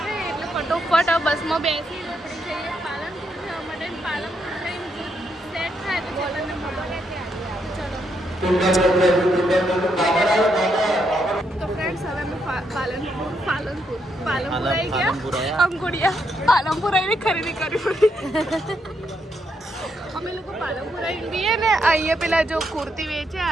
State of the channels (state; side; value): normal; both; correlation 0.78